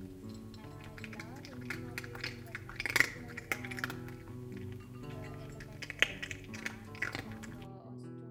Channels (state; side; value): identical; both; correlation 1.00